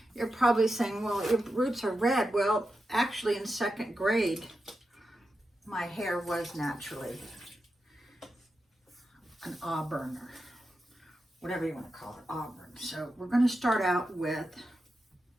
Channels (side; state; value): both; normal; correlation 0.89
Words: you're probably saying, well, your roots are red. Well, actually in second grade, my hair was naturally an auburn, or whatever you want to call it, auburn. So we're going to start out with